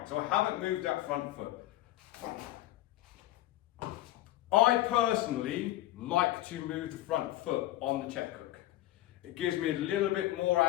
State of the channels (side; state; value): right; quieter; 15.4 dB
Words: So I haven't moved that front foot. I personally like to move the front foot on the check hook. It gives me a little bit more